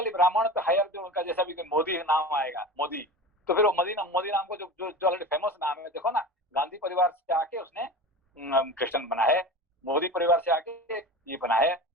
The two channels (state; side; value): normal; both; correlation 0.31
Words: ब्राह्मण तो हायर, जो उनका जैसा भी मोदी नाम आएगा, मोदी, तो फिर वो मोदी नाम को जो ऑलरेडी फेमस नाम है, देखो ना, गांधी परिवार से आके उसने क्रिश्चियन बना है, मोदी परिवार से आके ये बना है